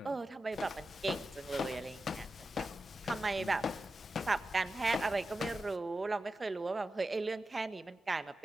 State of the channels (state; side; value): normal; both; correlation 0.92